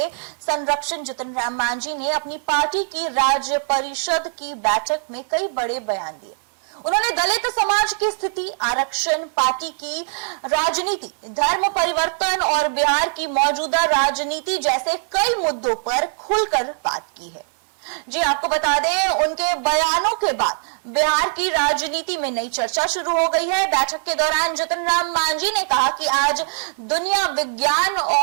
संरक्षण जितन राम मांझी ने अपनी पार्टी की राज्य परिषद की बैठक में कई बड़े बयान दिए। उन्होंने दलित समाज की स्थिति, आरक्षण, पार्टी की राजनीति, धर्म परिवर्तन और बिहार की मौजूदा राजनीति जैसे कई मुद्दों पर खुलकर बात की है। जी आपको बता दें, उनके बयानों के बाद बिहार की राजनीति में नई चर्चा शुरू हो गई है। बैठक के दौरान जितन राम मांझी ने कहा कि आज दुनिया विज्ञान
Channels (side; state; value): left; silent; digital silence